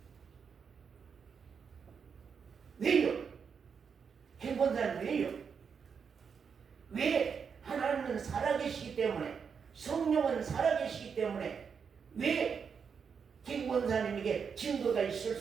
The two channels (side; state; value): left; quieter; 6.4 dB